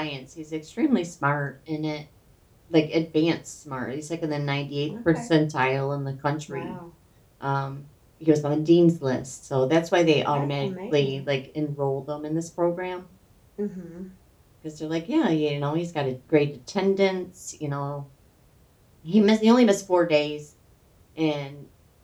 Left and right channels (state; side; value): identical; both; correlation 1.00